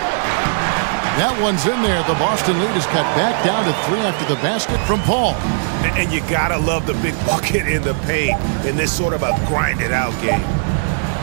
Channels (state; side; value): silent; left; digital silence